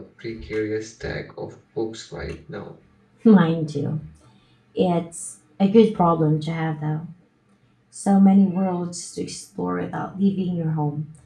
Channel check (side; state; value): both; identical; correlation 1.00